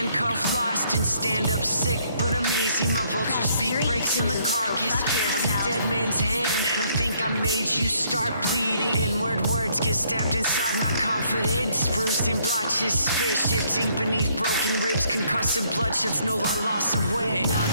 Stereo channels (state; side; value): inverted; both; correlation -0.67